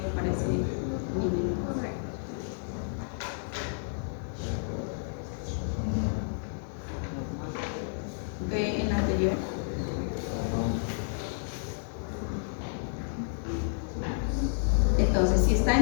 para ese niño? Ve en la anterior. Entonces, si está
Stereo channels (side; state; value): right; silent; digital silence